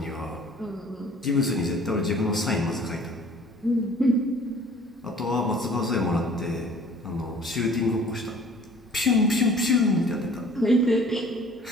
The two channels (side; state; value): both; normal; correlation 0.51